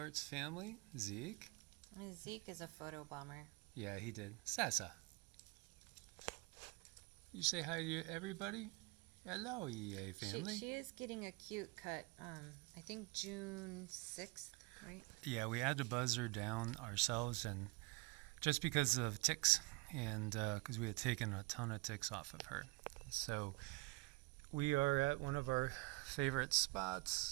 family. Zeke. Zeke is a photo bomber. Yeah, he did. Sasa. You say hi to everybody? Hello, EA family. She is getting a cute cut. I think June 6th, right? Yeah, we had to buzz her down ourselves, and just because of ticks, and because we had taken a ton of ticks off of her. So we are at one of our favorite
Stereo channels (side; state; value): left; quieter; 25.1 dB